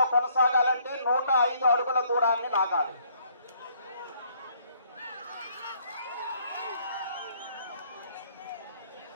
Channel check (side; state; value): both; inverted; correlation -0.65